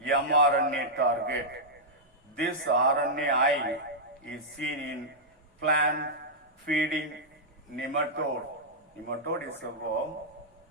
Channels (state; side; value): normal; both; correlation -0.09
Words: target. This RNAi is seen in plant feeding nematode. Nematode is a worm.